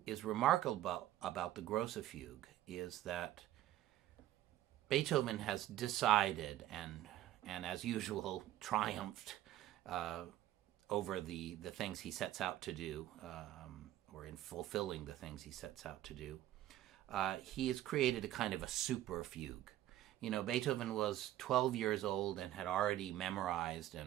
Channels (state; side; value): quieter; left; 13.6 dB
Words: is remarkable about the Gross Fuge is that Beethoven has decided and as usual triumphed over the things he sets out to do, or in fulfilling the things he sets out to do. He has created a kind of a super fugue. You know, Beethoven was 12 years old and had already memorized